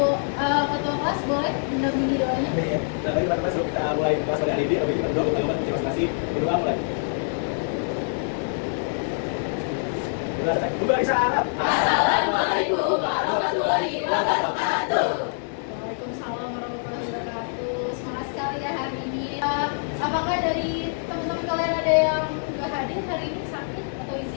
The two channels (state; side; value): silent; right; digital silence